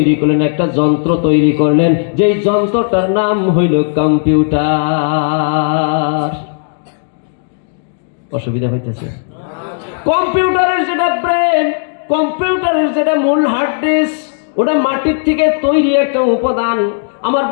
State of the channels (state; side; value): silent; right; digital silence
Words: করলেন, একটা যন্ত্র তৈরি করলেন, যেই যন্ত্রটার নাম হইল কম্পিউটার। অসুবিধা হইতেছে? কম্পিউটারের যেটা ব্রেন, কম্পিউটারের যেটা মূল হার্ড ডিস্ক, ওটা মাটির থেকে তৈরি একটা উপাদান। আমার